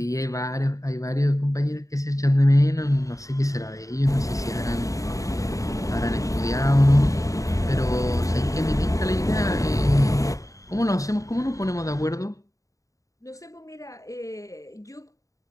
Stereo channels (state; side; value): late; right; 0.16 ms